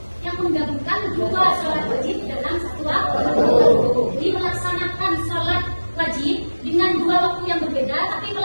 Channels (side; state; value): both; inverted; correlation -1.00